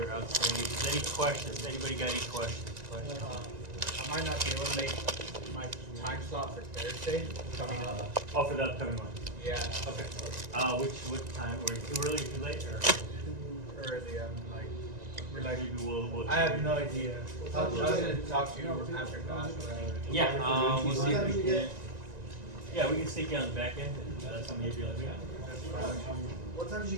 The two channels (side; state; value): left; late; 1.9 ms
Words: outstanding. Any questions? Anybody got any questions? I might not be able to make my time slot for Thursday coming up. Oh, for the upcoming one. Yeah, Okay. What time? Were you too early or too late? Or too early. maybe we'll. I have no idea. I was gonna talk to you after class or whatever. Yeah. We'll see if we can. Yeah, we can stick you on the back end. And that's when you'll be like, What time did you